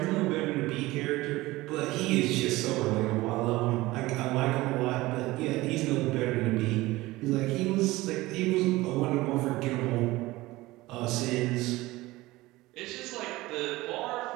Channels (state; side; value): quieter; left; 19.3 dB